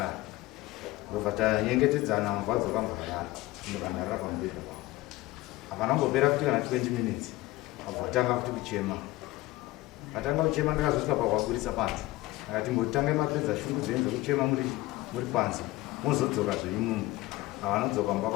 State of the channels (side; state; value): right; quieter; 18.6 dB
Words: ndobva tanyengetedzana mubva dzokamborara ndokandarara pamubhedha pavo hapana kungopera kuti kana 20 minutes abva vatanga kuti kuchema vatanga kuchema ndakazosvika pahwaburisa panze akati mbotangai mapedza shungu dzenyu dzekuchema muri panze mozodzoka zvenyu mumwe havanodzoka mba